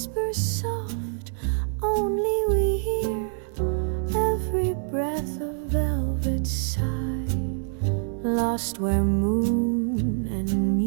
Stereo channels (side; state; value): left; silent; digital silence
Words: soft, only we hear every breath of velvet sigh, lost where moon and